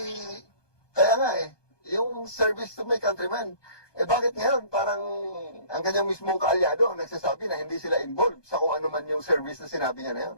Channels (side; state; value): right; late; 1.2 ms